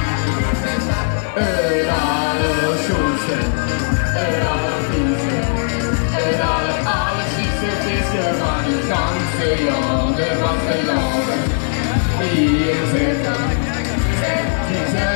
Alle schoonste, allervieste, allerziekste visser van het ganse land, van de landen. Hier zitten, die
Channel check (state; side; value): silent; right; digital silence